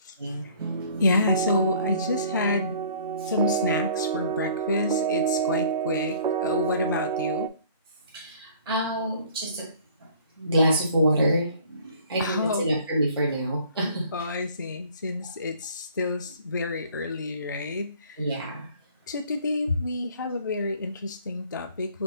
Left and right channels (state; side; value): inverted; both; correlation -0.53